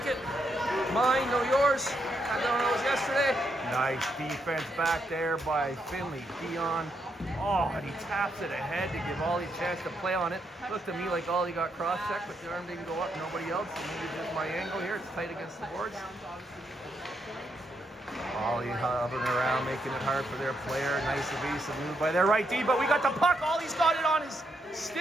it. Mine, no yours. I don't know, it was yesterday. Nice defense back there by Finley Dion. Oh, and he taps it ahead to give Ollie a chance to play on it. Looked to me like Ollie got cross-checked, but the arm didn't go up. Nobody else. So maybe just my angle here. It's tight against the boards. Ollie hovering around, making it hard for their player. Nice evasive move by their right D, but we got the puck. Ollie's got it on his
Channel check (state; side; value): normal; both; correlation 0.79